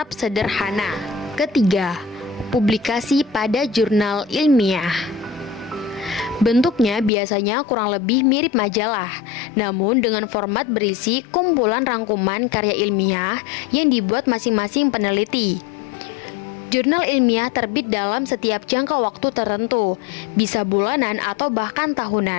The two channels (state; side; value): drops out; right; at 7.1 s